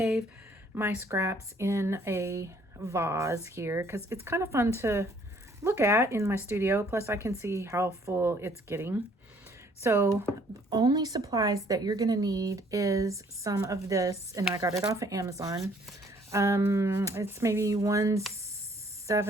my scraps in a vase here because it's kind of fun to look at in my studio. Plus I can see how full it's getting. So only supplies that you're going to need is some of this, and I got it off of Amazon. It's maybe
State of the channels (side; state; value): both; normal; correlation 0.61